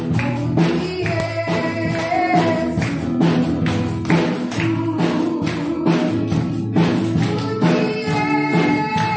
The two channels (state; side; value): identical; both; correlation 1.00